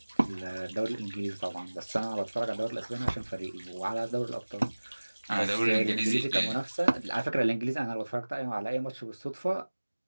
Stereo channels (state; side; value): inverted; both; correlation -1.00